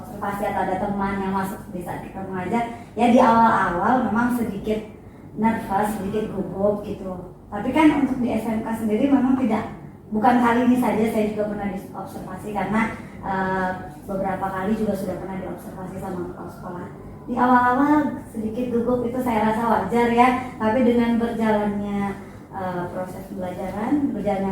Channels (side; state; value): both; identical; correlation 1.00